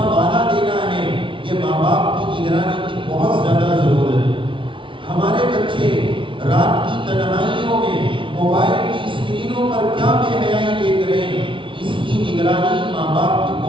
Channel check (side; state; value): left; late; 0.25 ms